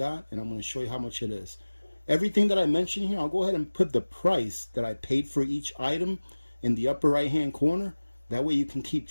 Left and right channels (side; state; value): both; inverted; correlation -1.00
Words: and I'm going to show you how much it is. Everything that I mentioned here, I'll go ahead and put the price that I paid for each item in the upper right-hand corner. That way you can keep